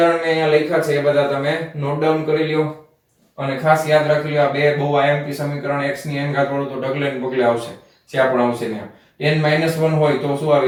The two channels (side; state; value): both; identical; correlation 1.00